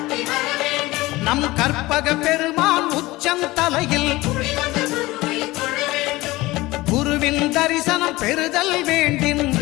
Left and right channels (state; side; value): quieter; right; 19.7 dB